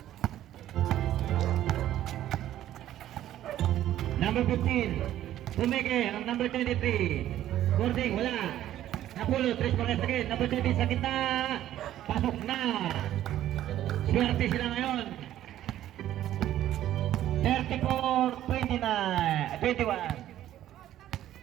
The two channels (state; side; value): quieter; left; 12.6 dB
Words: Number 15. Pumeke ang number 23. Boarding, wala. Napulot, Tres Marias again. Number 20 sa gitna. Pasok na. Swerte sila ngayon. 34-21.